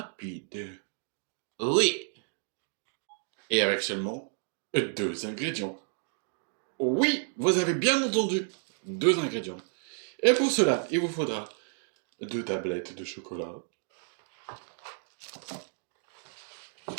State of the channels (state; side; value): silent; left; 57 dB below the other